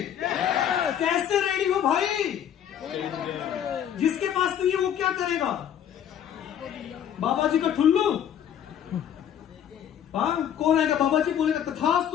कैसे रेडी हो भाई? जिसके पास नहीं है वो क्या करेगा? बाबा जी का ठुल्लू? कौन आएगा? बाबा जी बोलेगा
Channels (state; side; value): quieter; right; 9.6 dB